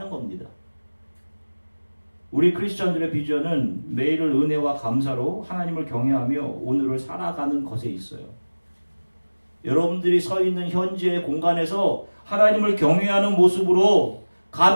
겁니다. 우리 크리스천들의 비전은 매일을 은혜와 감사로 하나님을 경외하며 오늘을 살아가는 것에 있어요. 여러분들이 서 있는 현재의 공간에서 하나님을 경외하는 모습으로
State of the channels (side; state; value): both; inverted; correlation -1.00